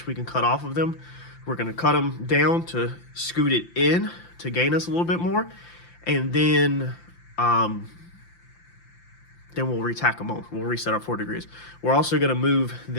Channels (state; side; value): late; right; 5.8 ms